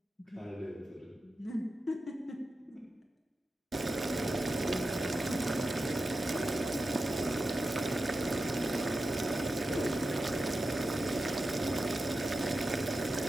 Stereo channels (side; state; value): both; normal; correlation 0.91